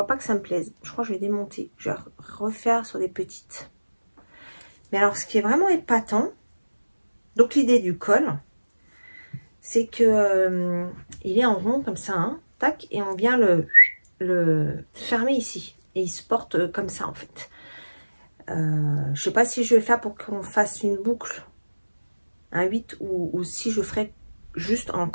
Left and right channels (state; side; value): inverted; both; correlation -1.00